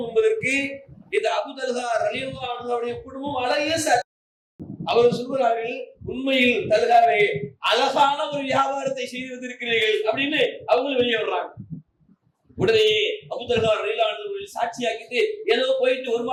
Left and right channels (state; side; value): identical; both; correlation 1.00